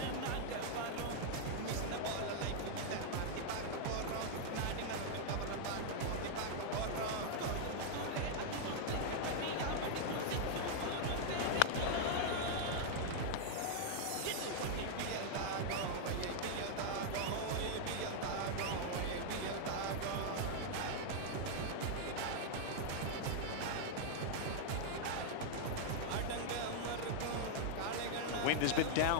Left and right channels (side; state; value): both; different; correlation -0.01